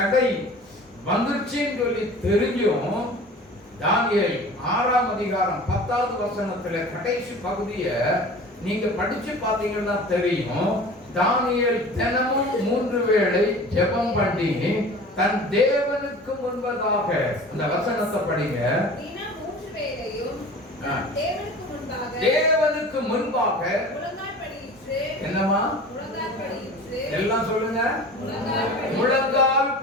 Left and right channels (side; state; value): both; normal; correlation 0.40